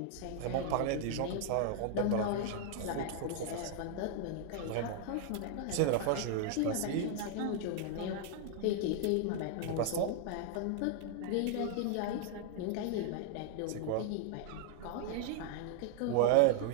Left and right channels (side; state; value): both; different; correlation 0.00